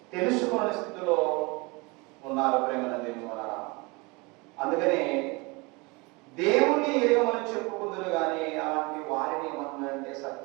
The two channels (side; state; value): left; quieter; 26.6 dB